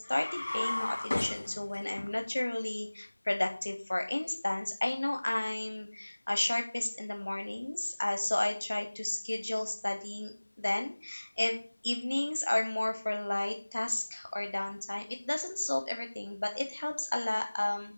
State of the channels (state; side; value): inverted; both; correlation -1.00